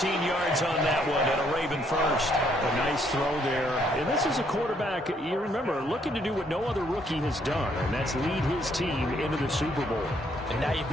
yards on that one, and a Raven first. A nice throw there. And this is a quarterback, you remember, looking to do what no other rookie has done, and that's lead his team into the Super Bowl. And now you've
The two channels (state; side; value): normal; both; correlation 0.69